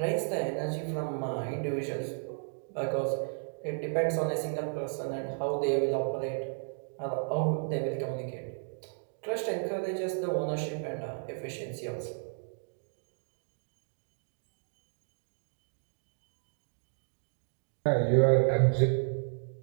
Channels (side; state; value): left; silent; digital silence